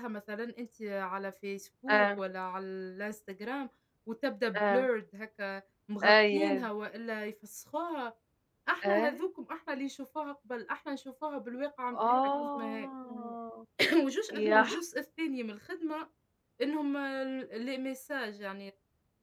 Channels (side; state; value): both; identical; correlation 1.00